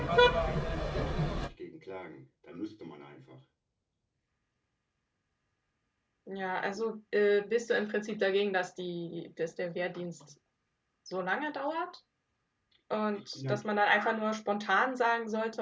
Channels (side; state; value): both; identical; correlation 1.00